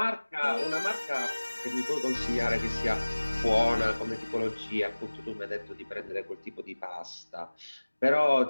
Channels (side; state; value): both; inverted; correlation -1.00